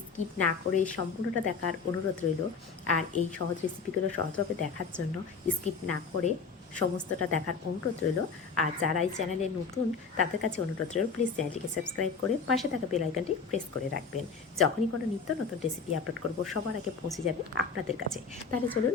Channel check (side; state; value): right; quieter; 5.2 dB